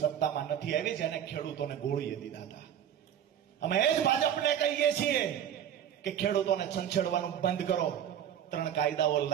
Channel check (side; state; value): left; quieter; 9.7 dB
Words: નથી આવી, જેને ખેડૂતોને ગોળીએ દીધા હતા. અમે એ જ ભાજપને કહીએ છીએ કે ખેડૂતોને છંછેડવાનું બંધ કરો. 3 કાયદાઓ